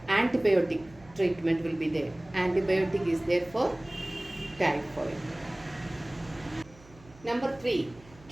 antibiotic treatment will be there. Antibiotic is there for typhoid. Number 3,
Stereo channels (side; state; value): right; noise; hum, 24 dB below the sound